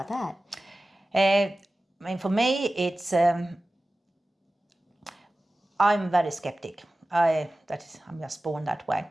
that? I mean, for me, it's... I'm very skeptic. I'm just born that way.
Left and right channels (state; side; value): normal; both; correlation 0.96